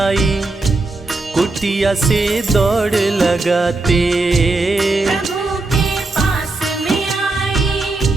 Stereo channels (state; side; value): quieter; left; 3.2 dB